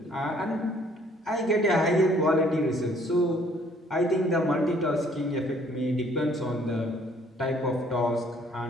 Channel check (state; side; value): normal; both; correlation 0.61